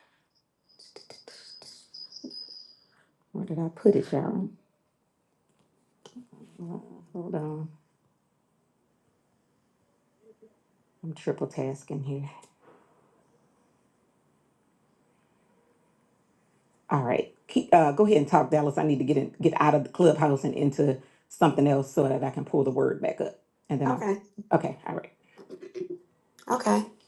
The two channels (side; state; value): both; identical; correlation 1.00